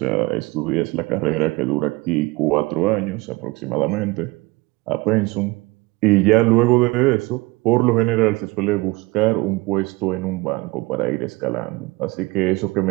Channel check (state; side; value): quieter; left; 23.1 dB